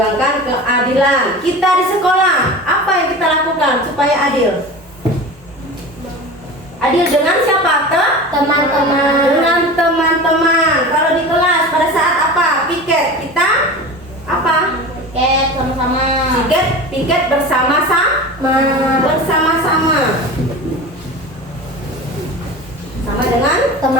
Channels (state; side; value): normal; both; correlation 0.33